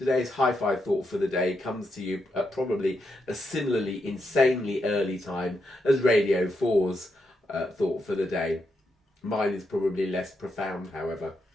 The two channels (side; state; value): both; normal; correlation 0.82